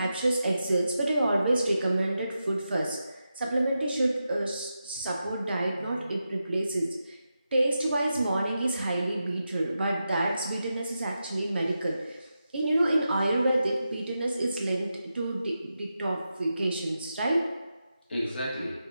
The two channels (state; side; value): inverted; both; correlation -0.89